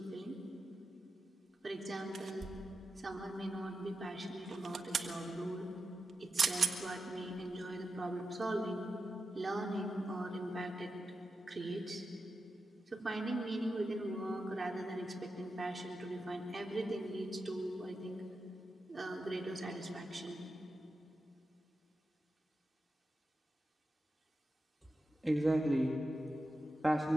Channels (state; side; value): normal; both; correlation 0.89